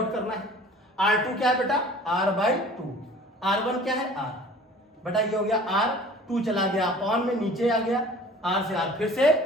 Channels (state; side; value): normal; both; correlation 0.46